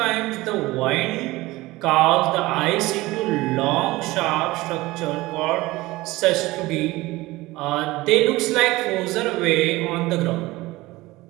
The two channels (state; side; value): quieter; left; 19.6 dB